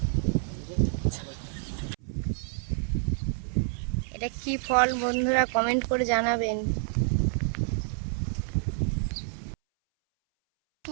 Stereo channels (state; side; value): silent; left; 59 dB below the other